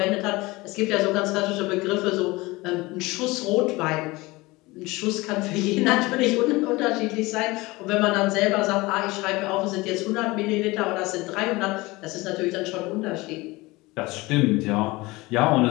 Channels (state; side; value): quieter; right; 21.9 dB